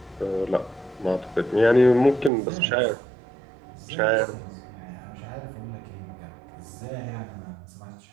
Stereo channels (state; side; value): drops out; left; at 2.3 s